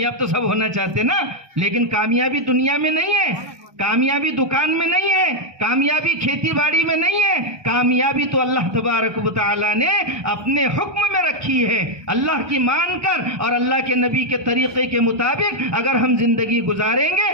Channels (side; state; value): left; late; 1.2 ms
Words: تو سب ہونا چاہتے نا، لیکن کامیابی دنیا میں نہیں ہے، کامیابی دکان میں نہیں ہے، کامیابی کھیتی باڑی میں نہیں ہے. کامیابی تو اللہ تبارک و تعالی نے اپنے حکم میں رکھی ہے. اللہ کی مان کر اور اللہ کے نبی کے طریقے کے مطابق اگر ہم زندگی گزاریں